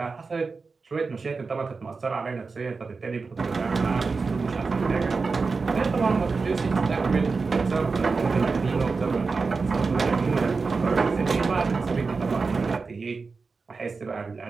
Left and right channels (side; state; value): left; quieter; 4.4 dB